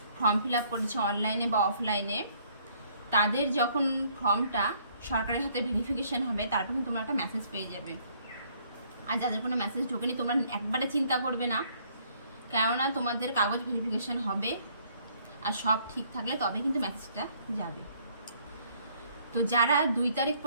ফর্ম ফিল আপ করেছে অনলাইনে বা অফলাইনে, তাদের যখন ফর্মটা সরকারের হাতে ভেরিফিকেশন হবে তারপর কিন্তু তোমরা একটা মেসেজ পেয়ে যাবে। আর যাদের কোনো মেসেজ ঢোকেনি তোমরা একবারে চিন্তা করবে না, কেননা তোমাদের কাগজ ভেরিফিকেশন হবে আর সব ঠিক থাকলে তবে কিন্তু মেসেজটা যাবে। তো যারা 2 তারিখ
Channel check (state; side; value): inverted; both; correlation -0.64